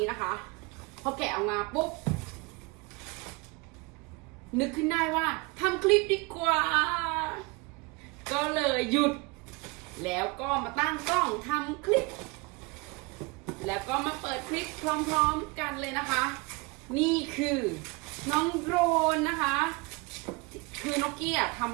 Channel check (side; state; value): left; quieter; 26.5 dB